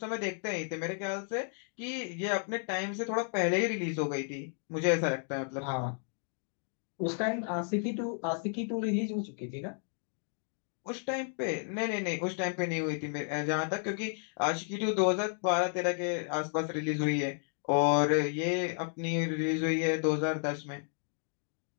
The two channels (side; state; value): right; silent; 56 dB below the other